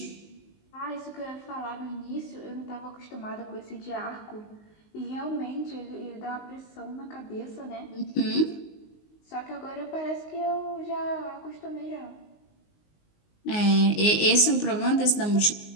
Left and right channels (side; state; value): right; late; 19 ms